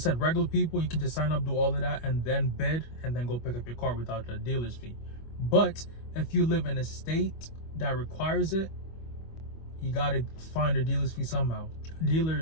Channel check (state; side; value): late; right; 25 ms